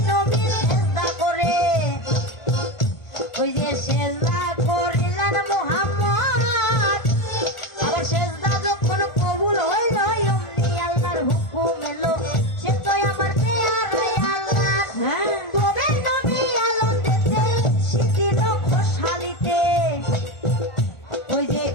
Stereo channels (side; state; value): right; late; 1.5 ms